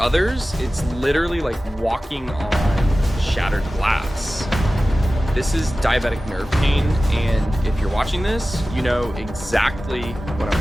it's literally like walking on shattered glass. This is diabetic nerve pain, and if you're watching this, you know exactly what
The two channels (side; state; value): both; normal; correlation 0.96